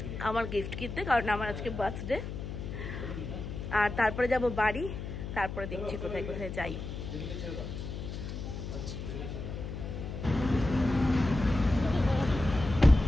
আমার গিফট কিনতে, কারণ আমার আজকে বার্থডে। আর তারপরে যাব বাড়ি, তারপরে দেখছি কোথায় কোথায় যাই।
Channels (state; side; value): noise; left; hum, 7 dB below the sound